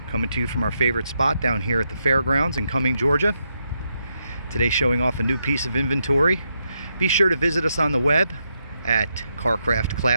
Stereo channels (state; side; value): inverted; both; correlation -0.82